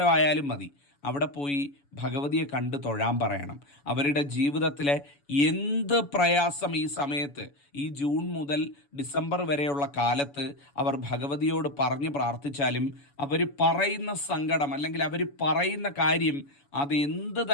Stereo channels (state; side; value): late; right; 7.0 ms